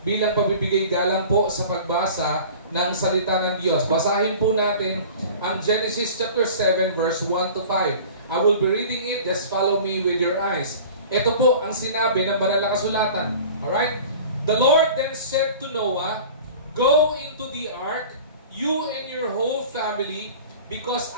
bilang pabibigay galang po sa pagbasa ng salita ng Diyos. Basahin po natin ang Genesis chapter 7 verse 1 to 5. I will be reading it, just follow me with your eyes. Ito po ang sinabi ng banal na kasulatan. Alright? The Lord then said to Noah, "Go into the ark, you and your whole family, because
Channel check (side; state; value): both; inverted; correlation -0.41